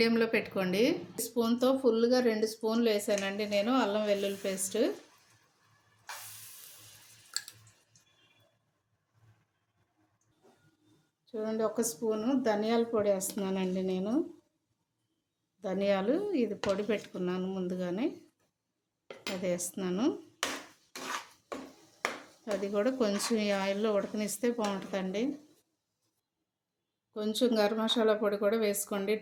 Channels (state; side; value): identical; both; correlation 1.00